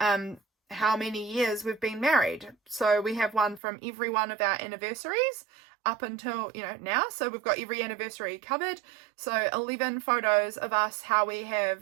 many years we've been married. So we have one from every one of our anniversaries up until, now. So we've got every anniversary covered. So 11 photos of us, how we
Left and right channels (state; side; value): drops out; left; at 3.6 s